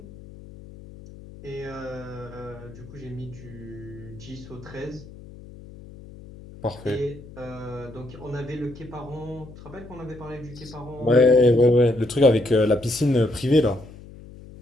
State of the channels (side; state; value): left; noise; hum, 17 dB below the sound